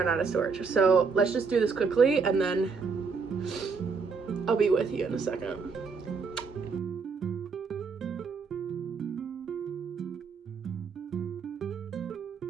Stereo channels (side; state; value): left; quieter; 5.1 dB